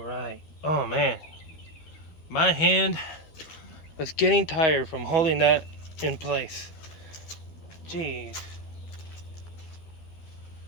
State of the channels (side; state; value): right; late; 13 ms